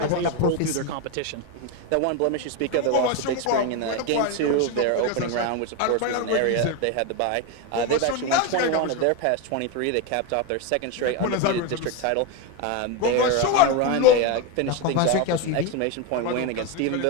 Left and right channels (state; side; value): different; both; correlation 0.03